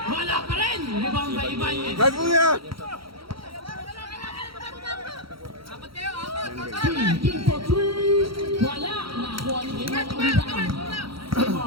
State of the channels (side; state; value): left; late; 0.74 ms